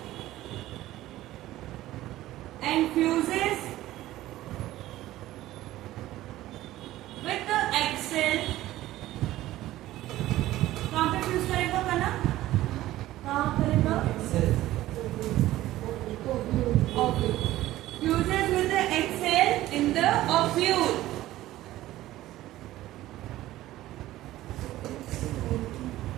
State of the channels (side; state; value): left; quieter; 15.4 dB